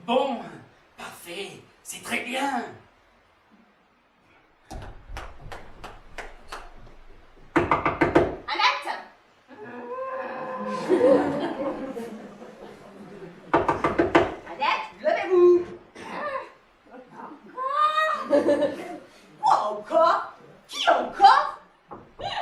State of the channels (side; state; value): both; identical; correlation 1.00